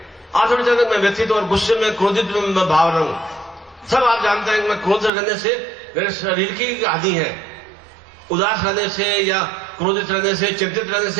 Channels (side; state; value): left; drops out; at 5.1 s